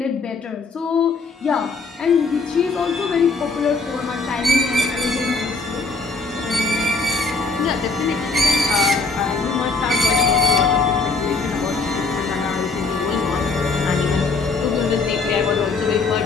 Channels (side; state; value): right; quieter; 3.9 dB